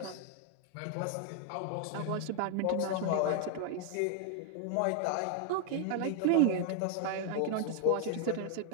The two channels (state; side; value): different; both; correlation 0.00